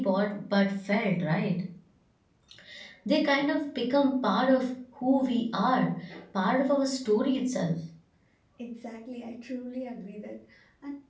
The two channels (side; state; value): both; identical; correlation 1.00